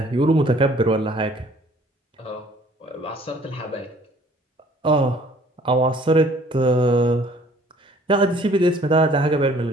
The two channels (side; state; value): both; normal; correlation 0.56